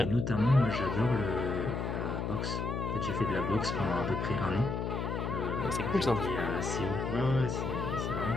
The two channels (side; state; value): left; noise; hum, 2 dB below the sound